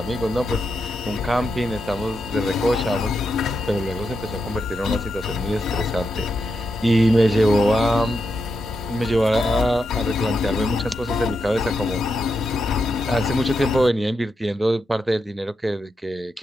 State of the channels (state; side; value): normal; both; correlation 0.85